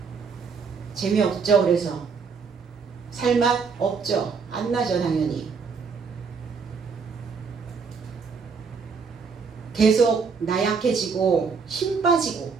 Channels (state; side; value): quieter; left; 5.4 dB